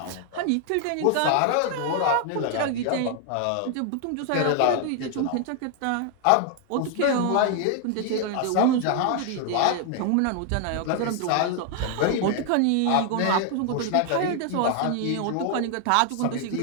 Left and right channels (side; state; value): both; different; correlation 0.00